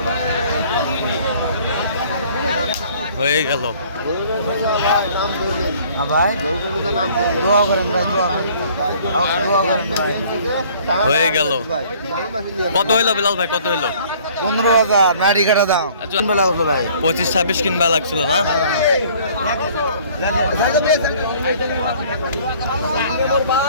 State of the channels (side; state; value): both; inverted; correlation -0.55